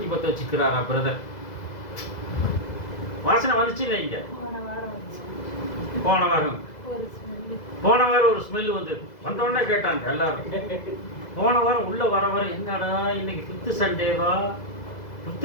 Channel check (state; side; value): late; right; 2.0 ms